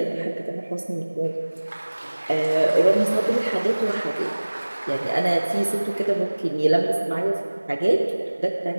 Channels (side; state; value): both; inverted; correlation -1.00